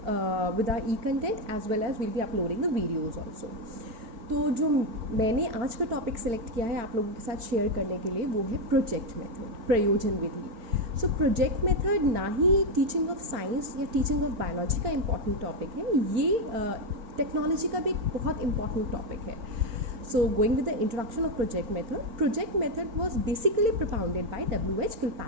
with our e-content as well as we'll be uploading the videos also. तो जो मैंने आज का topic select किया है आप लोगों के साथ शेयर करने के लिए वो है प्रोजेक्ट मेथड, प्रयोजन विधि. सो प्रोजेक्ट मेथड ना ही टीचिंग ऑफ साइंस या टीचिंग ऑफ बायोलॉजी का इम्पॉर्टेंट टॉपिक है, ये टेक्नोलॉजी का भी एक बहुत इंपॉर्टेंट टॉपिक है. So going with the introduction of project method was basically propounded bye W.H.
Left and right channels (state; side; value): late; left; 4.4 ms